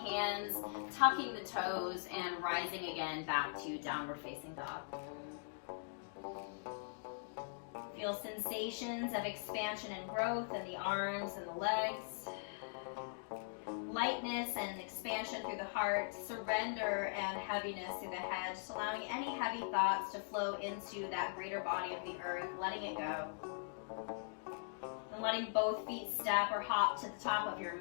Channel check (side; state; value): right; silent; digital silence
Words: tucking the toes, and rising again back to downward facing dog. Feel sensations of expansion and growth in the arms and the legs. Lightness and expansion through the heart, surrender and heaviness through the head, just allowing any heavy thoughts to flow into that greater body of the earth, letting it go. And letting both feet step or hop to the top of your